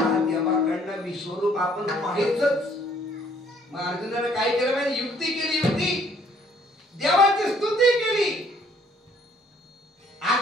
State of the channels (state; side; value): normal; both; correlation 0.62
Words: देवाकडनं विश्वरूप आपण पाहायचंच. मग अर्जुनाने काय केलं माहिती, युक्ती केली. युक्ती देवाची स्तुती केली.